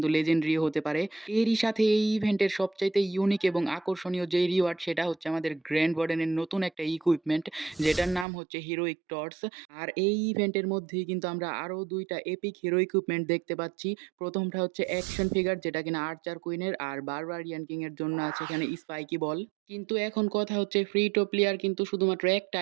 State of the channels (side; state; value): left; drops out; at 8.2 s